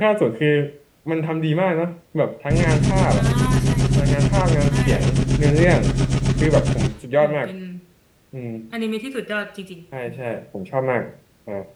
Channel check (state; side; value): identical; both; correlation 1.00